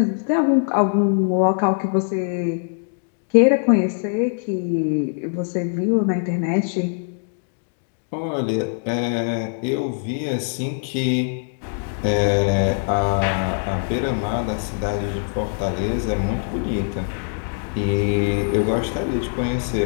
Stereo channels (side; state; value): right; silent; digital silence